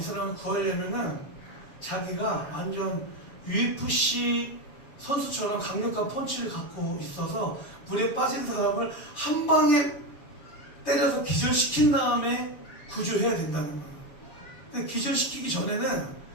사람을 구하려면은 자기가 완전 UFC 선수처럼 강력한 펀치를 갖고 있어서 물에 빠진 사람을 한 방에 때려서 기절시킨 다음에 구조해야 된다는 거예요. 근데 기절시키기 전에는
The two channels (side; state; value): right; late; 7.1 ms